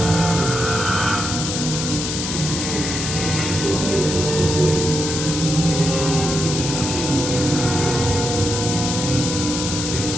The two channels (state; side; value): noise; left; hiss, 3 dB below the sound